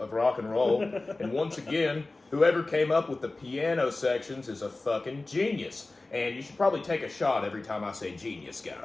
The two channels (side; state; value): right; quieter; 3.2 dB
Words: rock and roll. And once again, whoever came up with the piano sections is a fucking genius. And you should probably take a shot every time I say genius,